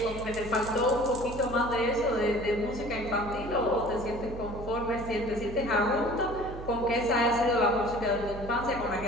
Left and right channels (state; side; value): noise; right; hum, 11 dB below the sound